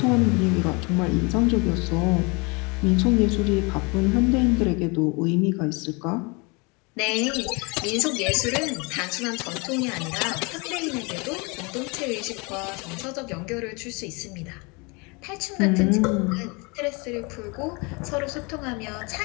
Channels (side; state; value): right; quieter; 29.3 dB